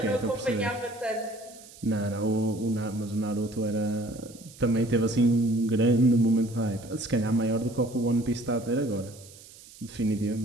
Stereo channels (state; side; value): noise; right; hiss, 20 dB below the sound